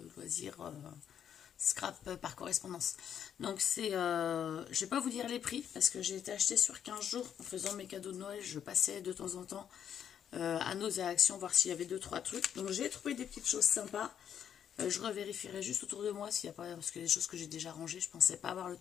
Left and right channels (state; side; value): quieter; right; 8.9 dB